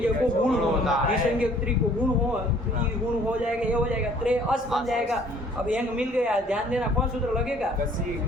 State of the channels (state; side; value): normal; both; correlation 0.57